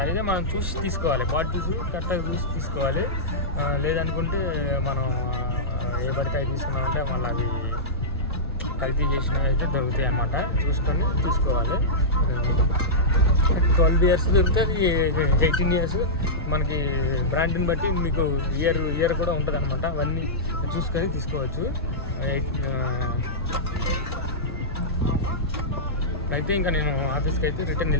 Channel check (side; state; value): both; normal; correlation -0.13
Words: అయితే మనం చూసి తీసుకోవాలి. బాటిల్స్ కరెక్ట్గా చూసి తీసుకోవాలి. లేదనుకుంటే మనం ఏ పడితే తీసుకున్నామంటే మళ్ళీ అవి కల్తీ చేసినవి అయితే దొరుకుతాయి అన్నమాట. చూసుకొని తీసుకోవాలి. 12 ఇయర్స్ దొరుకుతుంది, 18 ఇయర్స్. మనకి బ్రాండ్ని బట్టి మీకు ఇయర్ కూడా ఉంటుంది అనమాట. అవన్నీ చూసుకొని తీసుకోవచ్చు. అయితే ఇంకా నేను ఆఫీస్కి అయితే రిటర్న్